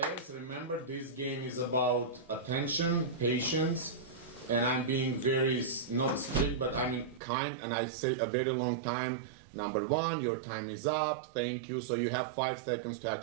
remember this game is about attention, patience, and I'm being very, not strict, but I mean kind, and I said a very long time. Number 1, your time is up, thank you, so you have 5 seconds to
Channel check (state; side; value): drops out; left; at 7.2 s